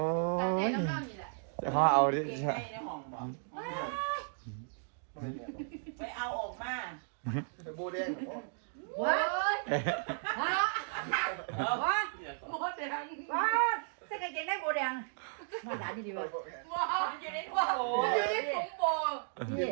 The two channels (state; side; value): silent; left; digital silence